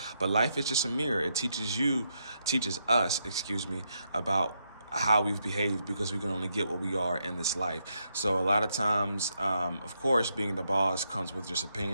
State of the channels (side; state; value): both; inverted; correlation -0.80